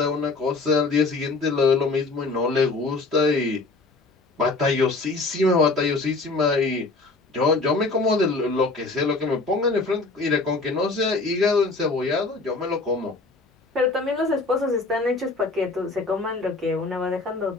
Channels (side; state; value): right; quieter; 3.6 dB